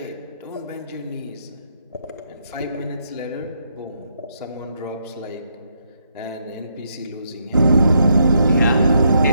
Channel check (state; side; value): inverted; both; correlation -0.77